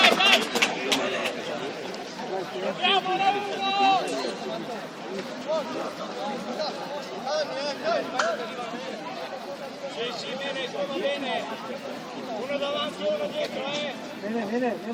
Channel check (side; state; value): both; identical; correlation 1.00